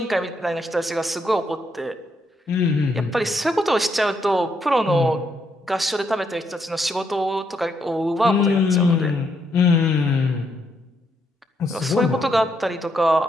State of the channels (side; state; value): both; normal; correlation 0.76